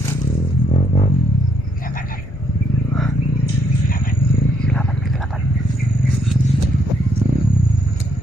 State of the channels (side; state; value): left; noise; rumble, 15 dB below the sound